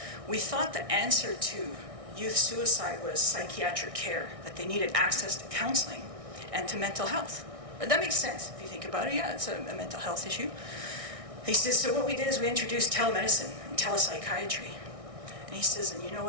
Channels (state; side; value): late; left; 1.6 ms